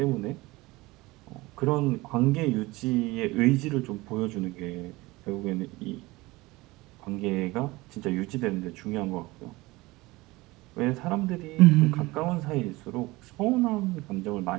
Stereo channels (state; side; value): quieter; left; 21.2 dB